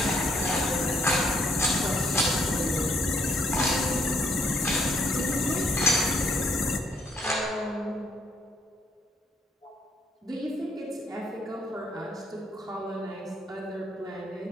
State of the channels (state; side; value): normal; both; correlation 0.70